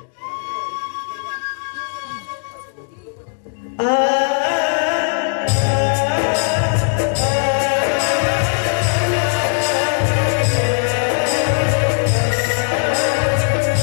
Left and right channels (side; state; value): right; silent; 58 dB below the other